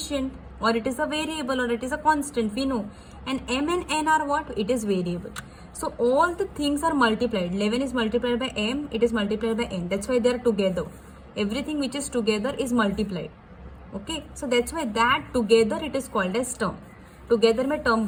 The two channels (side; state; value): both; identical; correlation 1.00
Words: or it is a variable, or it is a constant, we know. And m and n are what? It is variable. So all the things are multiplied. 11 is multiplied by m, it is multiplied by n. That's why they are together. Everything which is together is multiplied. Okay, so that's why that together it is called as term. Together में term